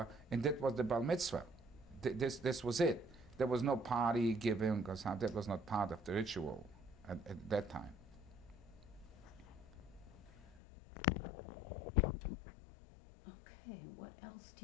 and that was the bar mitzvah. This was it. There was no party giving, because that was not part of the ritual at that time. Okay, what else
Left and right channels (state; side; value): drops out; right; at 10.6 s